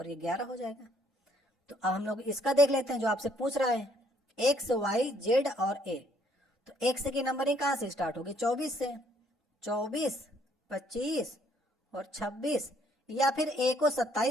ये 11 हो जाएगा। तो अब हम लोग इसका देख लेते हैं जो आपसे पूछ रहा है, X Y Z और A। तो X की नंबरिंग कहाँ से स्टार्ट होगी? 24 से। 24, 25 और 26, या फिर A को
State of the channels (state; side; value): normal; both; correlation 0.66